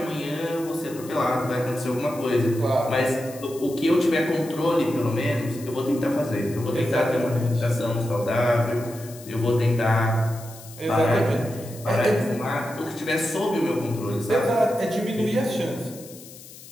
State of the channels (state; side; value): noise; left; hiss, 18 dB below the sound